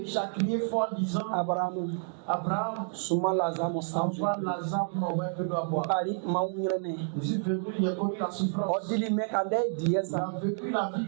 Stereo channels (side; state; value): left; silent; 58 dB below the other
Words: a crié fort en disant, Abrahamu Abraham, suma lazamo sanju. envoie Lazare pour m'envoyer un peu d'eau à boire. Bari ma unyrene. Je suis venu, il a connu la souffrance. Odili me kande Il diesa. a vécu la vie